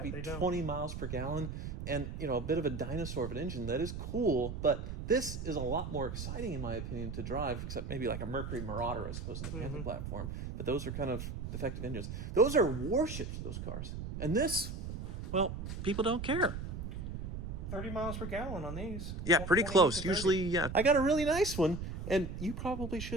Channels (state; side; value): noise; right; rumble, 6 dB below the sound